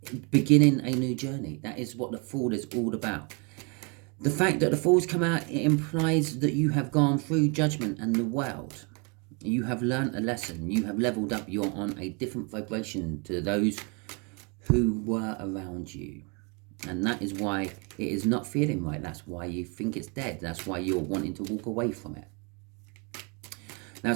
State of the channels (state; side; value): quieter; left; 33.5 dB